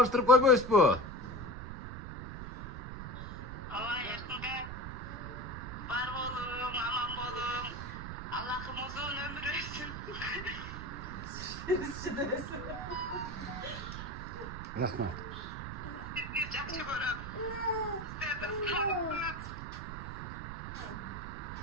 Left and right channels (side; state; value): right; noise; rumble, 7 dB below the sound